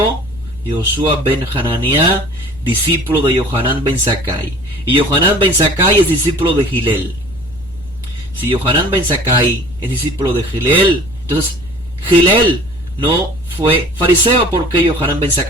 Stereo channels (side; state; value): left; noise; rumble, 20 dB below the sound